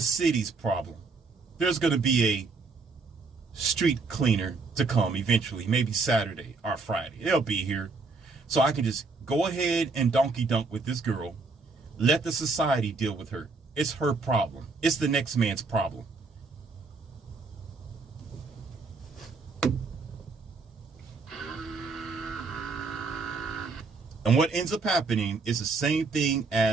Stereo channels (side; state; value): left; quieter; 4.1 dB